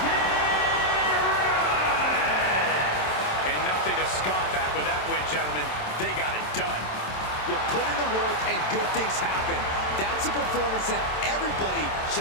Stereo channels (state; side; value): late; right; 27 ms